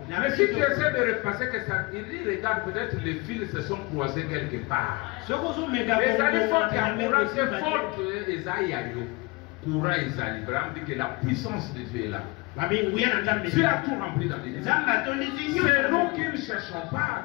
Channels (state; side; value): quieter; right; 26.0 dB